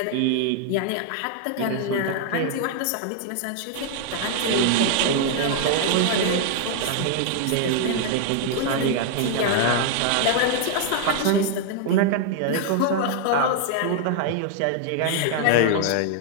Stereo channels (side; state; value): both; different; correlation 0.00